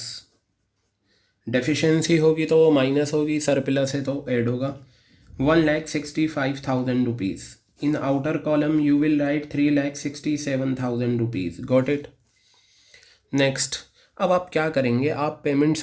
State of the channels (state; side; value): identical; both; correlation 1.00